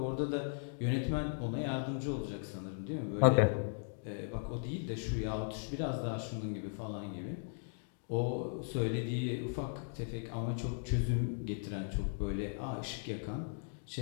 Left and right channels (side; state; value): right; silent; digital silence